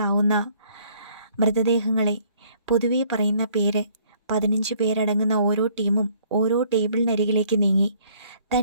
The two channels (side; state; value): both; inverted; correlation -0.61